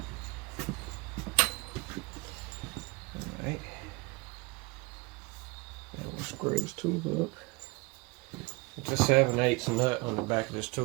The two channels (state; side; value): quieter; left; 26.7 dB